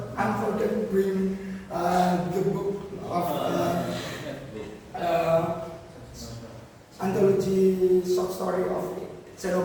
I'm forgetting to bring the book of anthology short story of Seno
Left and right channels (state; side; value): identical; both; correlation 1.00